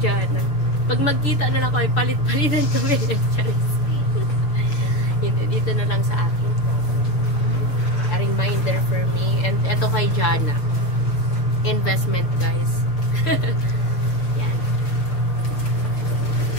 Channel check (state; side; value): late; right; 6.4 ms